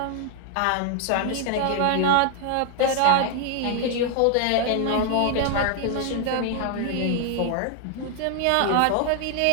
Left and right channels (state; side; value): different; both; correlation 0.00